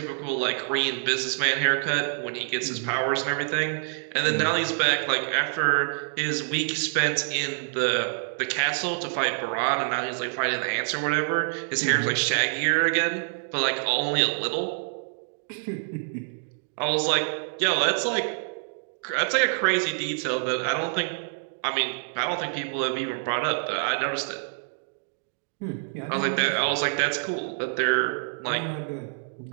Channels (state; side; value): silent; left; digital silence